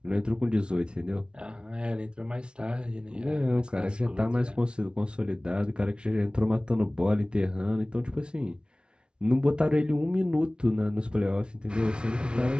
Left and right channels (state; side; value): late; left; 0.056 ms